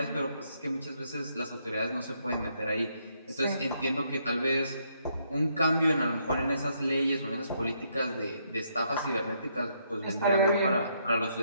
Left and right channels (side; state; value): both; inverted; correlation -0.73